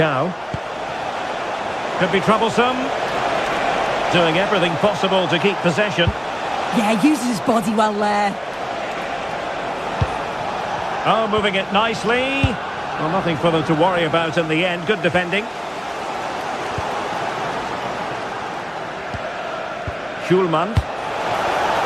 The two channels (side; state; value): both; identical; correlation 1.00